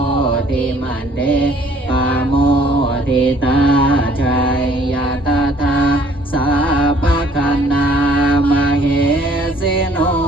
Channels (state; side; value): normal; both; correlation 0.58